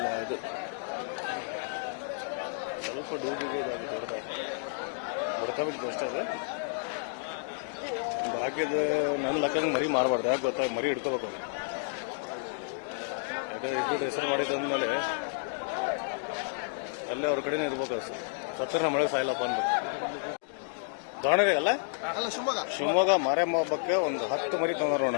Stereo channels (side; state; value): right; silent; digital silence